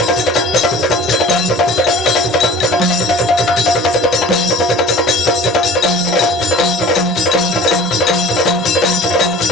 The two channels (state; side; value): normal; both; correlation 0.43